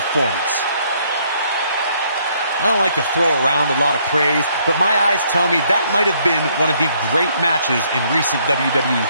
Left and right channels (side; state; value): both; inverted; correlation -0.68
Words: I don't like to throw around a lot of praise, but my eyes tell me that might have been one of the great matches in recent WWE